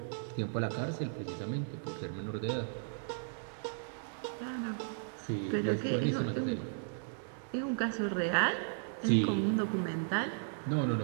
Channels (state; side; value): silent; left; digital silence